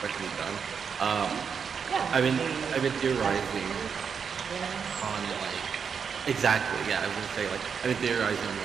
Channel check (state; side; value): quieter; left; 6.5 dB